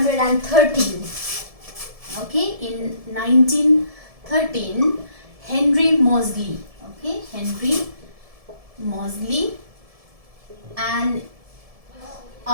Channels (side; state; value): left; late; 1.7 ms